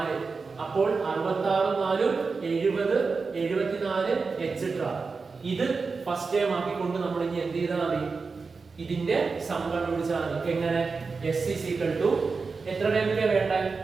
അപ്പോൾ 66 4 70 74 etc. ഇത് ഫസ്റ്റ് ടൈം ആക്കിക്കൊണ്ട് നമ്മൾ ഇനി എന്ത് ചെയ്താൽ മതി? ഇതിന്റെ സം കണ്ടുപിടിച്ചാൽ മതി. എങ്ങനെ? s is equal to എത്ര ടൈമിലെ വേണ്ട?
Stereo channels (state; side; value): quieter; left; 4.6 dB